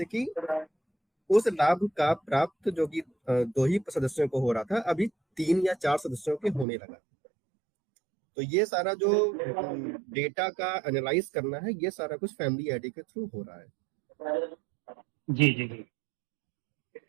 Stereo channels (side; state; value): left; drops out; at 6.7 s